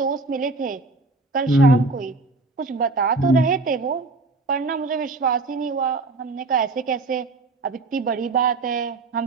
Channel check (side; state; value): left; quieter; 3.4 dB